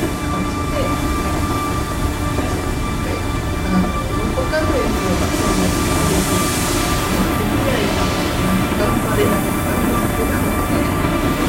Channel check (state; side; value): identical; both; correlation 1.00